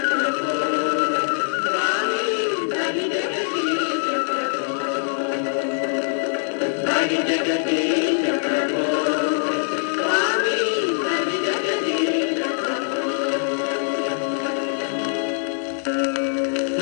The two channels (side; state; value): right; silent; 64 dB below the other